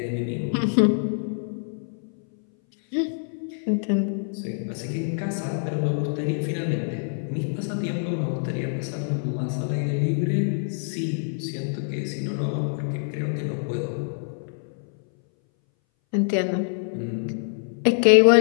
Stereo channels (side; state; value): right; silent; 60 dB below the other